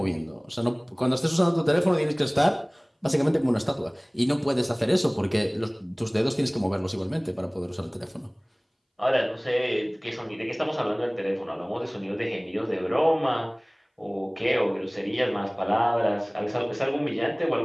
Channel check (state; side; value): identical; both; correlation 1.00